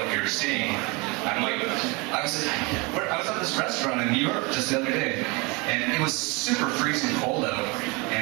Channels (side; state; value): left; quieter; 27.7 dB